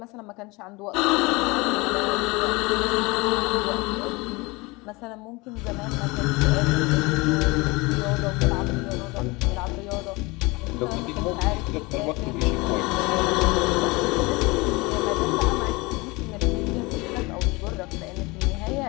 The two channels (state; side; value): quieter; right; 24.6 dB